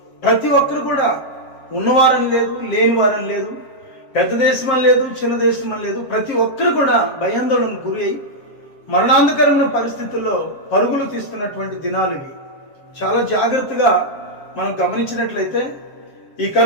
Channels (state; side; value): late; right; 7.4 ms